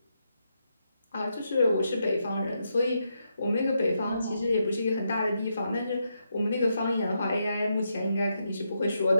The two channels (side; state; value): both; inverted; correlation -0.82